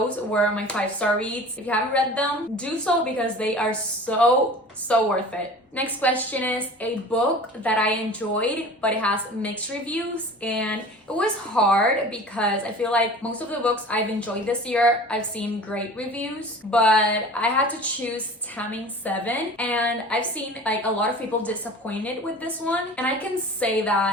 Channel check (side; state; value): both; normal; correlation 0.40